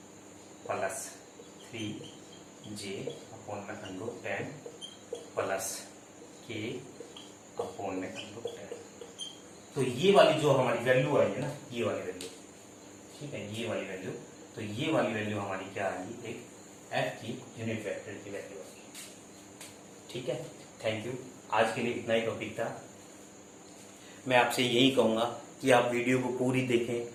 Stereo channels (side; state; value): both; identical; correlation 1.00